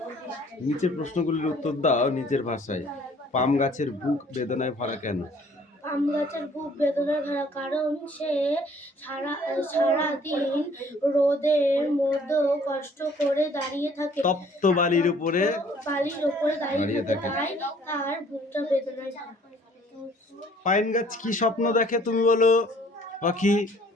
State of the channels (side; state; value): both; normal; correlation 0.57